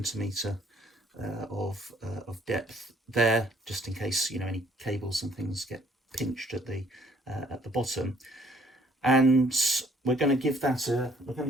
of depth there, just in case any cables and things get pinched at the bottom. And we're going to give that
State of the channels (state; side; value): normal; both; correlation 0.62